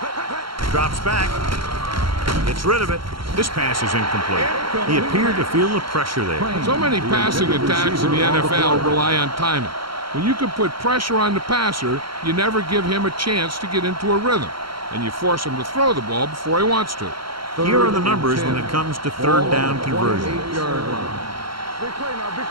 Drops back. Gets rid of it. This pass is incomplete. He appeared to feel the pressure there. So many passing attacks in the NFL rely on timing. When you can put pressure on the passer, you never give him a chance to get into a rhythm, and you force him to throw the ball before he wants to. Here are the numbers when it comes to 3rd down conversions. Big play now, big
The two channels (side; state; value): left; late; 0.73 ms